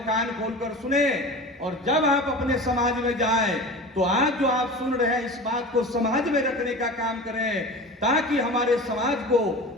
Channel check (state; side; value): normal; both; correlation 0.34